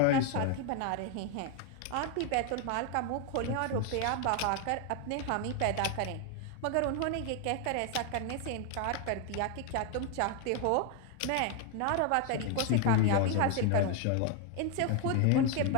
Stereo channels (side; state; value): both; different; correlation 0.01